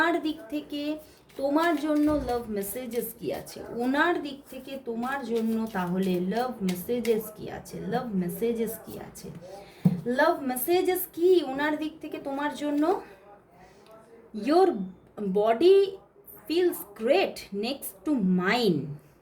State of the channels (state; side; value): identical; both; correlation 1.00